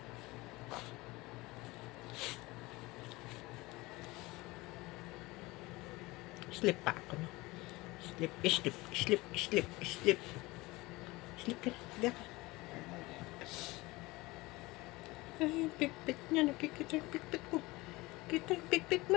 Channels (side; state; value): right; quieter; 21.5 dB